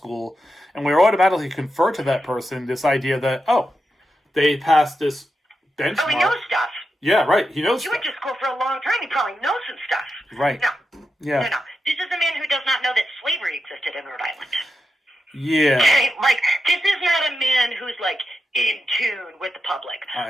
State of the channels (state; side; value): normal; both; correlation 0.88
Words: and we automatically confer to that person this idea that, they passed this benchmark. Oh, he knows stuff. Yeah, right. He knows. He went to school for a long time. He probably knows some stuff. Right. No. Yeah. No. This is a man who does not know that slavery existed in Rhode Island. Yeah. Okay? Like, this is not a man who's, like, in tune with the public. I